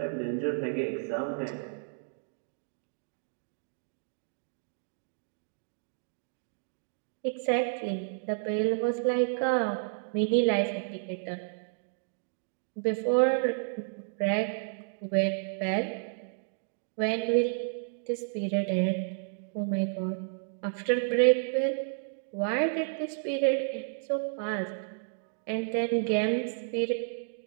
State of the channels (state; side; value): silent; left; digital silence